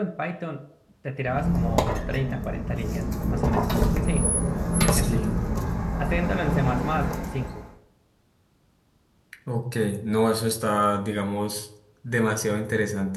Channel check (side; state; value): both; identical; correlation 1.00